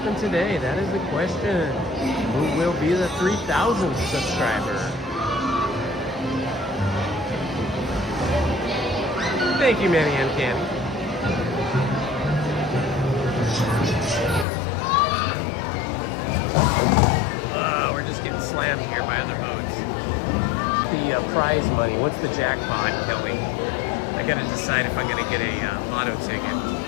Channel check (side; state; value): right; drops out; at 14.5 s